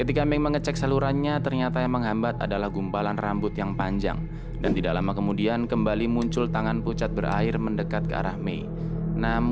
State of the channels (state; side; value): identical; both; correlation 1.00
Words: Mei mengecek salurannya, ternyata yang menghambat adalah gumpalan rambut yang panjang. Dan tidak lama kemudian kembali muncul tangan pucat berair mendekat ke arah Mei.